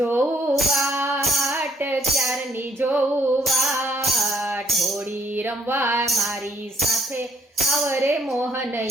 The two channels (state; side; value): normal; both; correlation 0.65